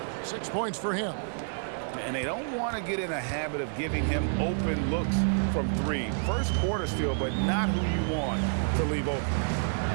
6 points for him. And they don't want to get in a habit of giving him open looks from 3. First quarter still, but not who you want to leave open.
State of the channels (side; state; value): left; silent; digital silence